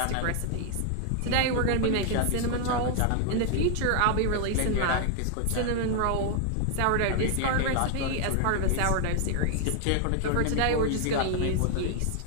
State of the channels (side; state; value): both; different; correlation 0.00